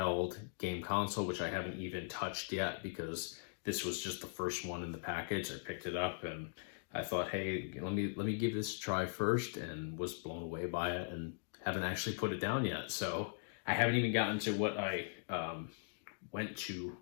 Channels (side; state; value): right; silent; digital silence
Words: game console, which I haven't even touched yet because this was just the first one in the package. I picked it up and I thought, hey, let me give this a try first, and was blown away by it and haven't actually put it down yet. So I haven't even gotten to what I went to